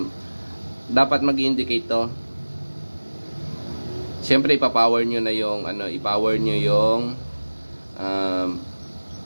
dapat mag-indicate to. Siyempre, ipa-power nyo na yung, i-power nyo yung,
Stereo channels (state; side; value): inverted; both; correlation -1.00